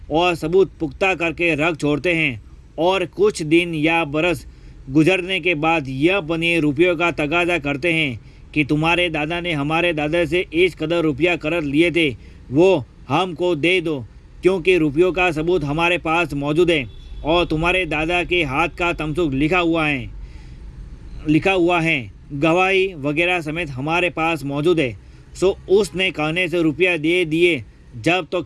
और सबूत पुख्ता करके रख छोड़ते हैं। और कुछ दिन या बरस गुजरने के बाद यह बनिए रुपयों का तगाजा करते हैं कि तुम्हारे दादा ने हमारे दादा से इस कदर रुपया कर्ज लिए थे, वो हमको दे दो, क्योंकि रुपयों का सबूत हमारे पास मौजूद है और तुम्हारे दादा के हाथ का तमसुक लिखा हुआ है, गवाही वगैरह समेत हमारे पास मौजूद है। सो उसने कहने से रुपया दे दिए, जब तो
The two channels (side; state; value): both; identical; correlation 1.00